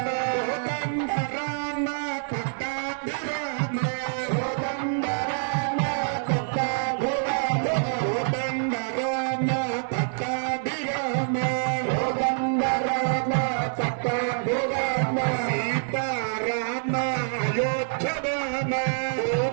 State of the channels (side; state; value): left; silent; digital silence